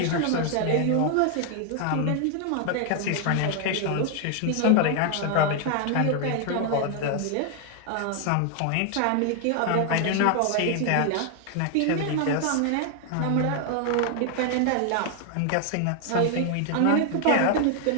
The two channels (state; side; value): different; both; correlation 0.00